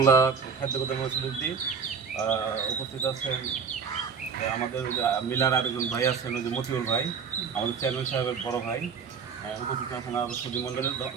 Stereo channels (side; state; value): left; quieter; 6.1 dB